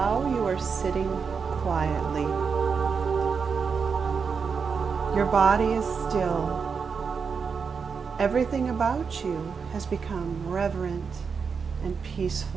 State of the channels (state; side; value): quieter; left; 5.7 dB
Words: you are sitting quietly. Your body is still. Everything about you has become reverent and